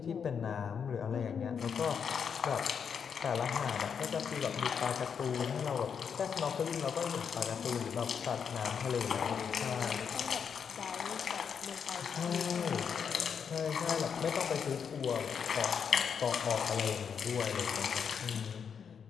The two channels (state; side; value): quieter; right; 7.0 dB